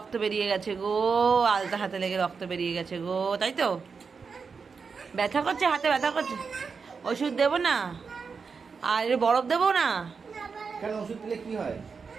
বেরিয়ে গেছে গো, আলতা হাতে লেগে রক্ত বেরিয়ে গেছে গো, তাই তো? ব্যথা করছে, হাতে ব্যথা করছে। ওষুধ দেবো না? আর বরফ দেবো না? কেন, ওষুধ দিলে কি হয়?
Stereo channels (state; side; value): quieter; left; 5.3 dB